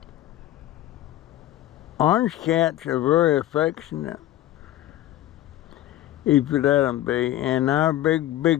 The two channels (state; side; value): quieter; right; 14.2 dB